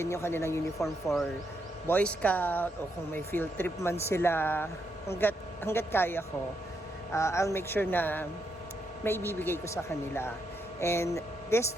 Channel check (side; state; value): both; normal; correlation 0.79